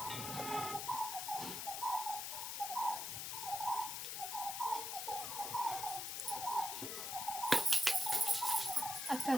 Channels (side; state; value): left; noise; hiss, 4 dB below the sound